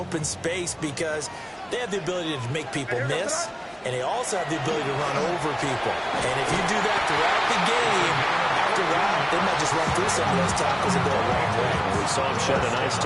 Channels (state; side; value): identical; both; correlation 1.00